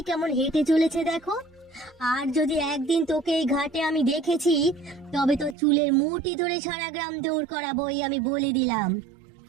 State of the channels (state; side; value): drops out; left; at 5.6 s